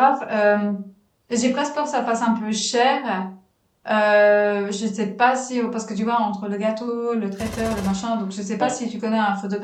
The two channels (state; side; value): identical; both; correlation 1.00